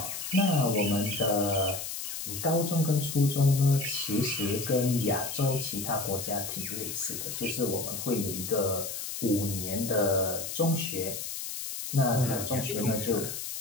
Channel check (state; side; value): noise; left; hiss, 6 dB below the sound